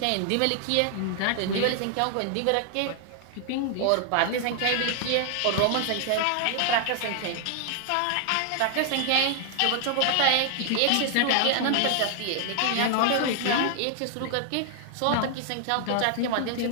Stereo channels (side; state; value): both; different; correlation 0.00